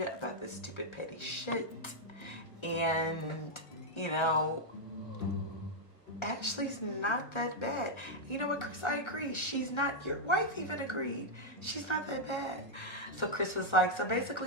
about this stupid petty shit. And, you know, Ashley's not that bad. You know what, Chris, I agree. She's not, your wife even agreed. She's not that bad. So Chris was like, so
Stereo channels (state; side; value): late; right; 1.4 ms